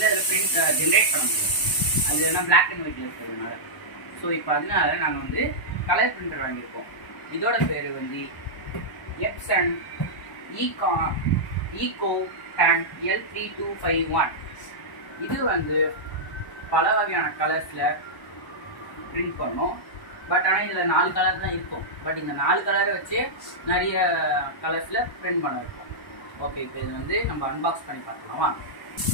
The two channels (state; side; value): late; right; 1.0 ms